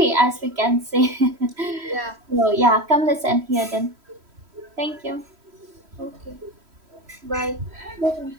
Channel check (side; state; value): left; late; 3.1 ms